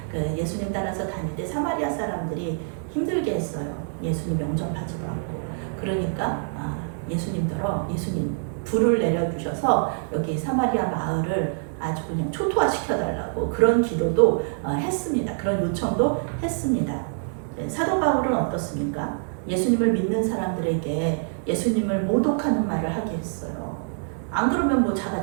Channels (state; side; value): silent; left; digital silence